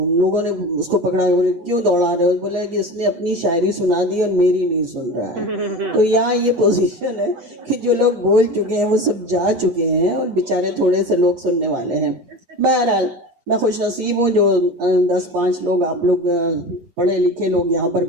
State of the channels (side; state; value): left; late; 8.5 ms